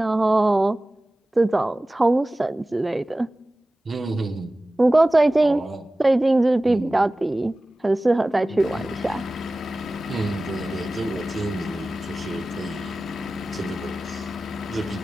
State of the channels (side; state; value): both; normal; correlation 0.97